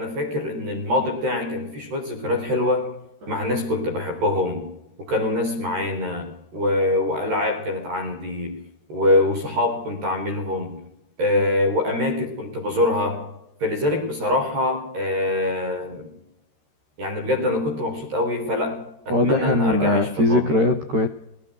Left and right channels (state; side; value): late; left; 13 ms